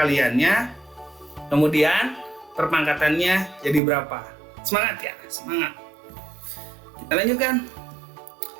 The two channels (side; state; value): left; drops out; at 3.8 s